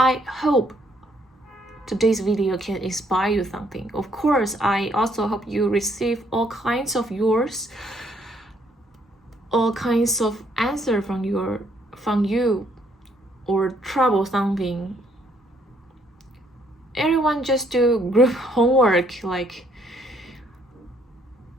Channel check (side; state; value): both; normal; correlation 0.68